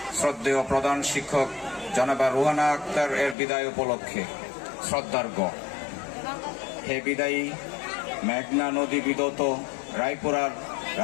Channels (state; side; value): drops out; right; at 3.4 s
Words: শ্রদ্ধেয় প্রধান শিক্ষক জনাবা রুহানা আক্তার এর বিদায় উপলক্ষে শ্রদ্ধার্ঘ। হে বিদায়ী মেঘনা নদী বিদত রায়পুরার